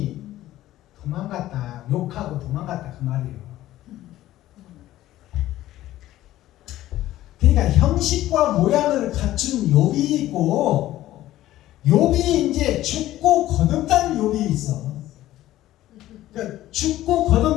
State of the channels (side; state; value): right; quieter; 14.6 dB